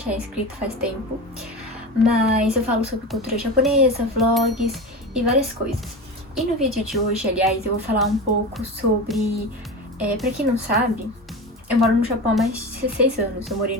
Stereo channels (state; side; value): normal; both; correlation 0.26